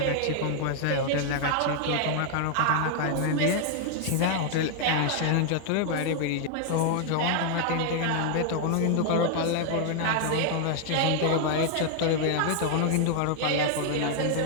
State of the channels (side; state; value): both; different; correlation 0.00